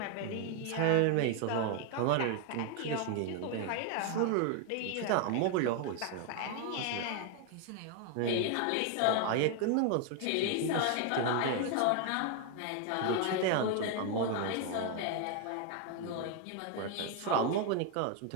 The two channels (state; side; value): different; both; correlation 0.01